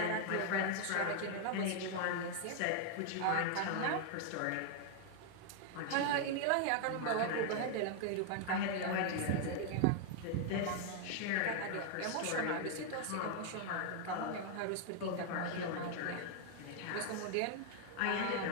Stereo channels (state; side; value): different; both; correlation 0.00